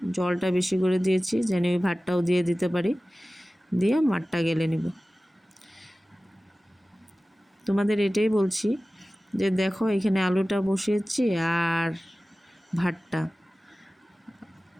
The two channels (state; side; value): normal; both; correlation 0.97